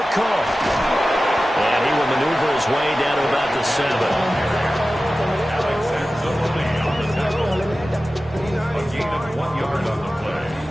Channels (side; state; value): both; normal; correlation 0.95